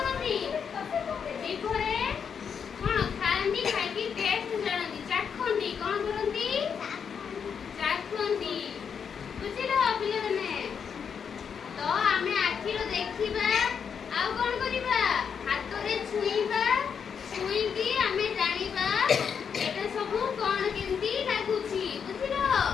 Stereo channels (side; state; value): right; quieter; 6.9 dB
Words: ଜିଭରେ କଣ ଖାଆନ୍ତି? ଖାଇକି ଟେଷ୍ଟ ଜାଣନ୍ତି, ଚାଖନ୍ତି। କଣ କରନ୍ତି? ଚାଖନ୍ତି ବୁଝିଲ ପିଲାମାନେ। ତ ଆମେ ଆଖିରେ ଦେଖିବା, ଆଉ କଣ କରିବା? ହାତରେ ଛୁଇଁବା, ଛୁଇଁକି ଆମେ ଜାଣିବା এটা ସବୁ କଣ କେମିତି ଲାଗୁଛି ବୁଝିଲ।